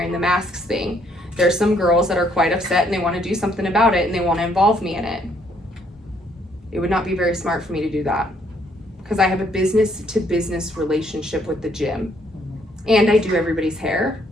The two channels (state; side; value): normal; both; correlation 0.68